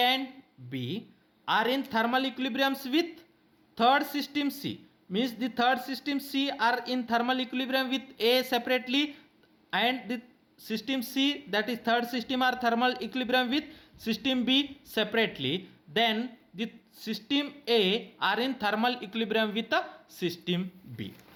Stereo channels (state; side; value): identical; both; correlation 1.00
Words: and B are in thermal equilibriums with third system C, means the third system C are in thermal equilibrium with A separately, and the system C, that is third system, are thermal equilibrium with system B separately, then the system A are in thermal equilibrium with the system B.